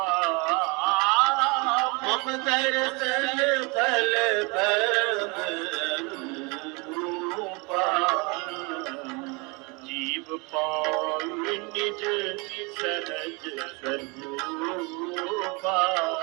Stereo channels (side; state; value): left; quieter; 29.1 dB